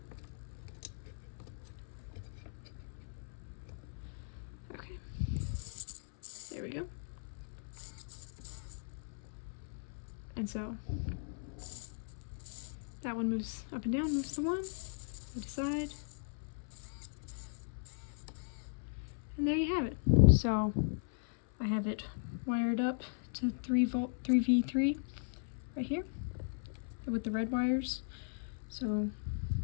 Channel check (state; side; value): silent; right; 52 dB below the other